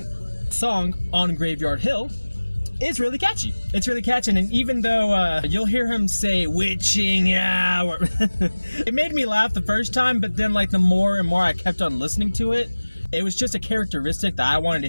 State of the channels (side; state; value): both; inverted; correlation -1.00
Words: the song On Graveyard Hill is really catchy. It's really catchy, and even though you'll hear him say witching hour, it made me laugh the first time, but then like the more and more I kept on listening to it, it was just a characteristic that I wanted to